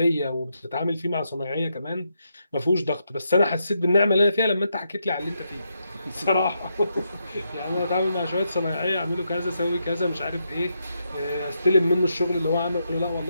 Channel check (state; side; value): inverted; both; correlation -0.82